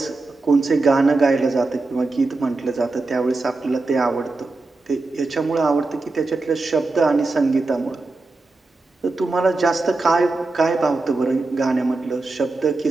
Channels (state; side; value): quieter; left; 3.4 dB